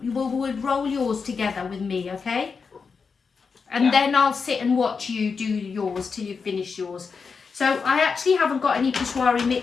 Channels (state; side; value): quieter; right; 5.3 dB